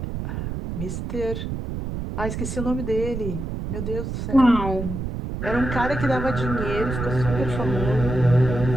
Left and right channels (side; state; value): right; noise; rumble, 5 dB below the sound